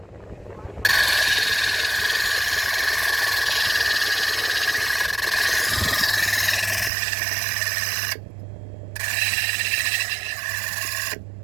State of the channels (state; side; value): drops out; left; at 6.9 s